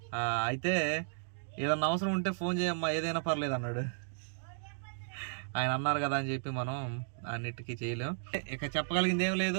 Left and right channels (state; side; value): silent; left; digital silence